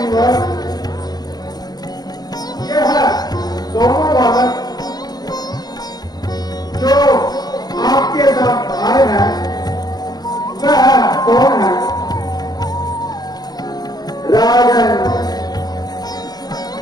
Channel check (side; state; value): right; late; 0.19 ms